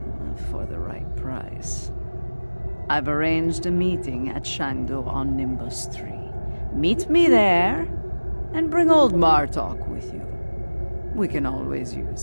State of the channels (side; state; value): both; inverted; correlation -1.00